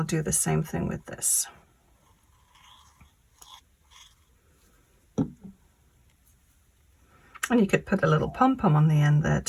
do the same thing with this. And you could put a little pom-pom on the end there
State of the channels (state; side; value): identical; both; correlation 1.00